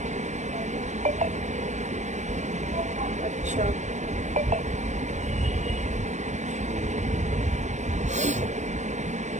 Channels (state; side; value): late; left; 0.34 ms